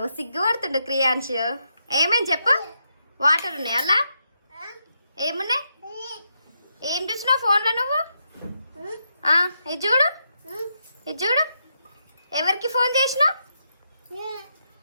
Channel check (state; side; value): inverted; both; correlation -0.82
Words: సిగ్గుపడుతుండు క్రియాన్స్. ఏమేమి చెప్పు. వాటర్ ఉన్నాయి అలా? ఏమున్నాయి? ఏం చూస్తున్నావు ఫోన్లో నువ్వు? ఇది చూడు, ఇది చూడు. ఎవరికి ఫోన్ చేసినావు